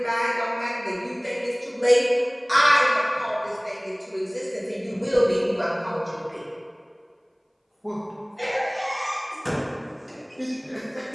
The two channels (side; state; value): both; identical; correlation 1.00